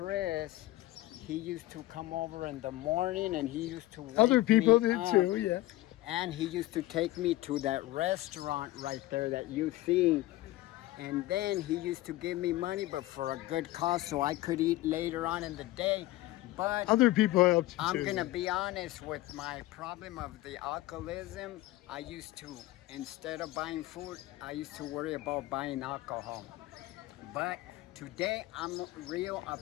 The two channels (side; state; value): right; quieter; 17.3 dB